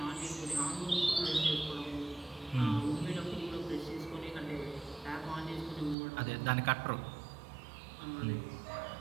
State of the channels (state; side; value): drops out; left; at 6.0 s